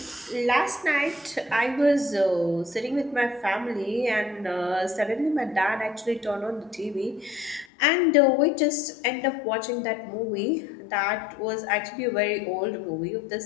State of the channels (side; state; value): right; drops out; at 7.7 s